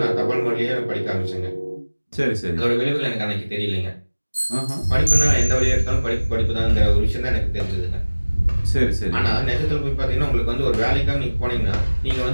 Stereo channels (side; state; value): both; inverted; correlation -1.00